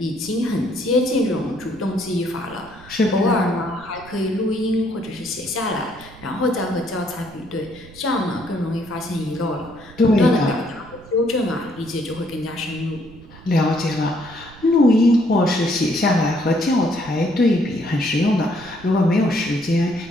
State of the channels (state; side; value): noise; right; rumble, 21 dB below the sound